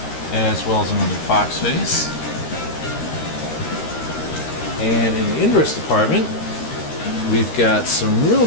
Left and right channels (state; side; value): late; right; 13 ms